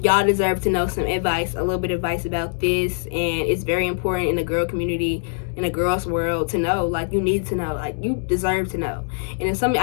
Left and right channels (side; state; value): right; silent; digital silence